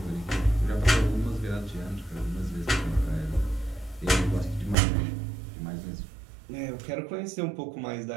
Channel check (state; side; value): drops out; left; at 4.8 s